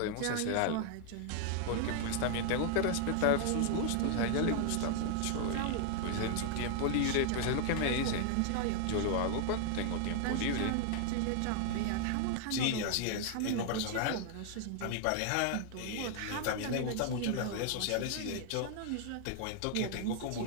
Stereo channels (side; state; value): both; different; correlation 0.00